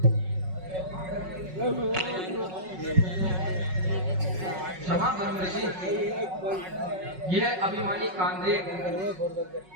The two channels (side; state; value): left; late; 5.4 ms